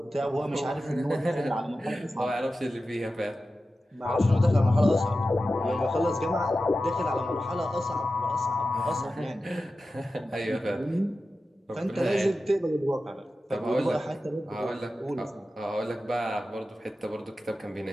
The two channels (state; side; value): normal; both; correlation 0.93